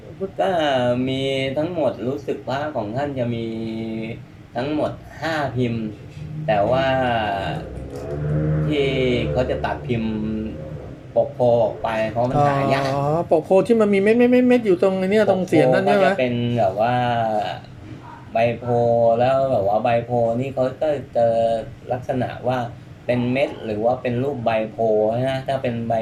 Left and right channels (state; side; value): identical; both; correlation 1.00